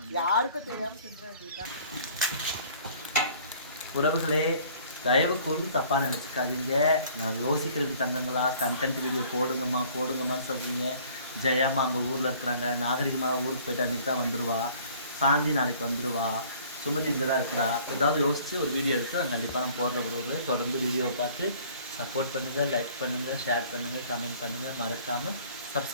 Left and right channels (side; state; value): both; inverted; correlation -0.54